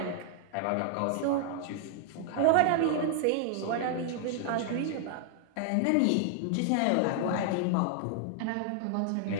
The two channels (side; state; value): both; different; correlation 0.00